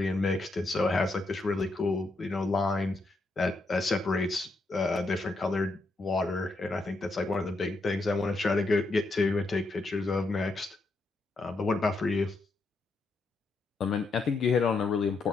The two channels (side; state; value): right; quieter; 3.2 dB